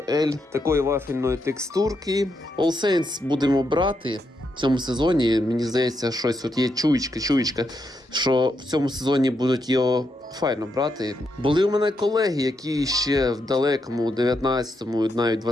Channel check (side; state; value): both; normal; correlation 0.81